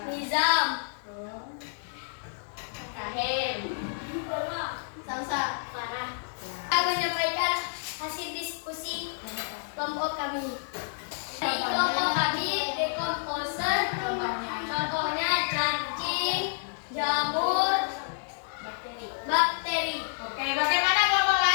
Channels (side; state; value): right; silent; digital silence